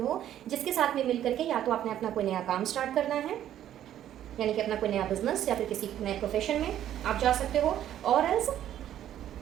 जिसके साथ में मिल करके या तो आपने अपना कोई नया काम स्टार्ट करना है, यानी कि अपना कोई नया बिजनेस, या फिर किसी नए प्रोफेशन में आप जा सकते हो। और एल्स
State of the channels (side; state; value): left; quieter; 11.4 dB